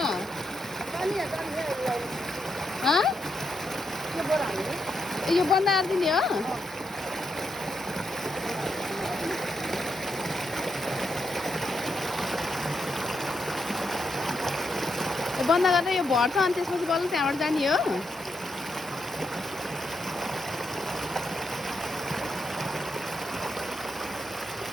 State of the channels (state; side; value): normal; both; correlation 0.82